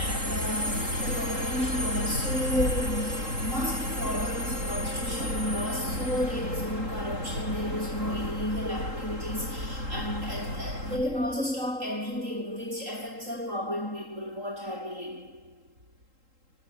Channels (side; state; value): left; late; 3.8 ms